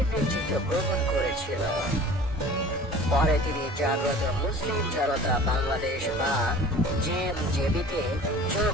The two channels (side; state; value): both; normal; correlation 0.44